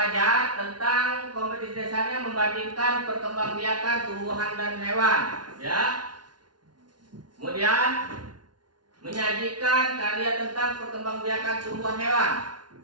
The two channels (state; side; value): late; left; 0.70 ms